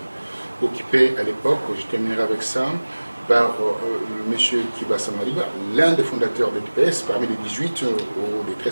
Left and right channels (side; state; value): both; inverted; correlation -1.00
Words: occupé à l'époque, je terminerai avec ça. par M. Kibasa Maliba, l'un des fondateurs de l'UDPS, parmi les 18 ou les